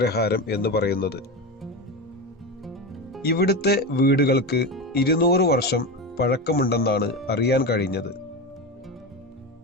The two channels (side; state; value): both; normal; correlation 0.20